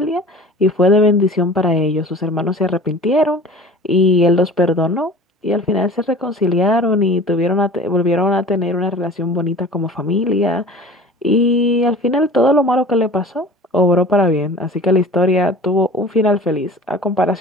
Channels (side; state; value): both; normal; correlation 0.41